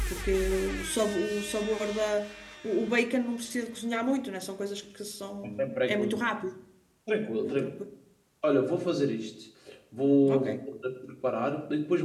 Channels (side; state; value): both; identical; correlation 1.00